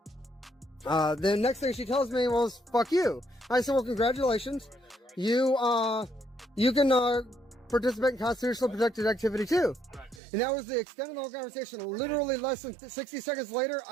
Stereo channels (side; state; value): left; drops out; at 10.2 s